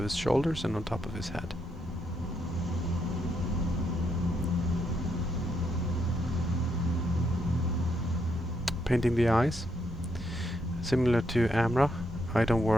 his shoulders and on top of his head. Painting the eyes. Similar to Amra, I don't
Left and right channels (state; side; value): normal; both; correlation 0.78